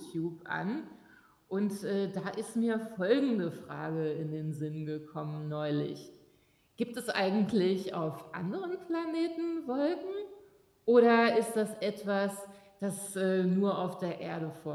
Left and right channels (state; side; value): identical; both; correlation 1.00